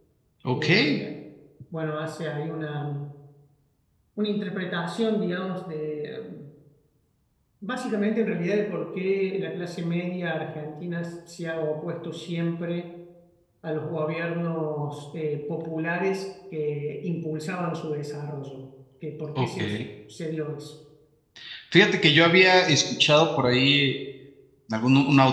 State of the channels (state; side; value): identical; both; correlation 1.00